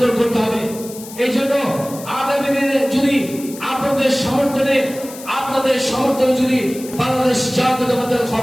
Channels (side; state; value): left; noise; hiss, 15 dB below the sound